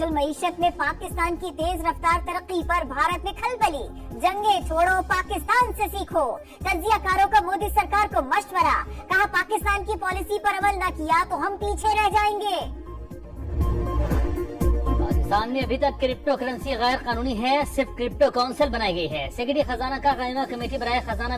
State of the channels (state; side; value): identical; both; correlation 1.00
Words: मईशत में पाकिस्तान की तेज रफ्तार तरक्की पर भारत में खलबली। जंगे छोड़ो, पाकिस्तान से सीखो। तज्जियाकारों का मोदी सरकार को मशवरा, कहा पाकिस्तान की पॉलिसी पर अमल न किया तो हम पीछे रह जाएंगे। पाकिस्तान में अभी तक क्रिप्टो करेंसी गैर कानूनी है, सिर्फ क्रिप्टो काउंसिल बनाई गई है। सेक्रेटरी खजाना का कायमा कमेटी बराए खजाना